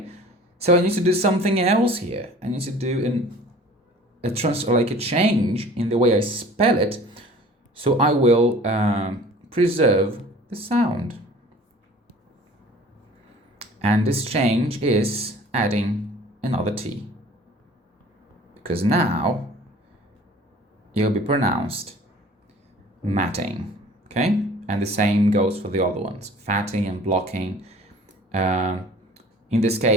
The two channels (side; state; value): both; normal; correlation 0.47